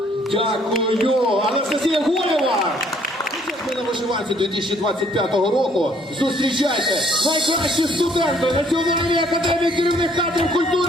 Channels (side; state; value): both; normal; correlation 0.63